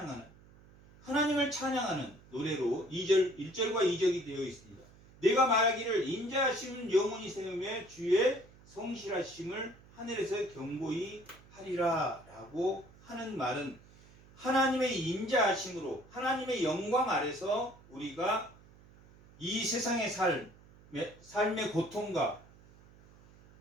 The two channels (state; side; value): noise; right; hum, 24 dB below the sound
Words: 찬양하는 노래로 1절과 2절이 되어 있습니다. 내가 말하기를 인자하심은 영원히 세우며 주의 성실하심을 하늘에서 경고히 하리라 라고 하는 말은 하나님의 인자하심으로 하나님의 영광 아래서 우리가 이 세상의 삶의 고통과